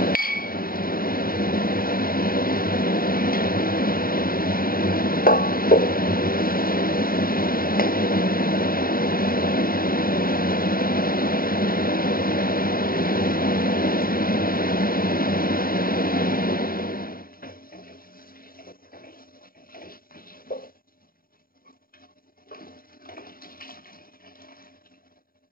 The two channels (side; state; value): right; late; 0.42 ms